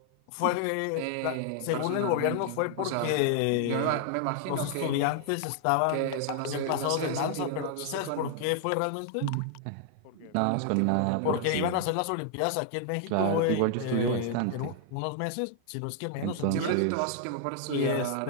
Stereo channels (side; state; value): both; different; correlation 0.00